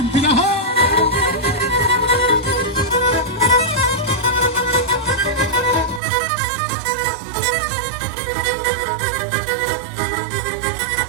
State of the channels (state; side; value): drops out; left; at 6.0 s